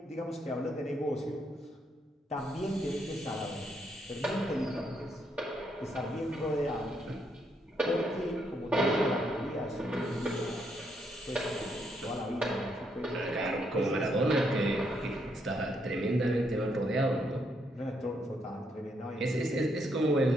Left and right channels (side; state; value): both; normal; correlation 0.75